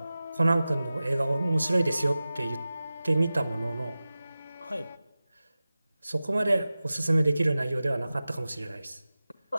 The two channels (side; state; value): both; inverted; correlation -0.96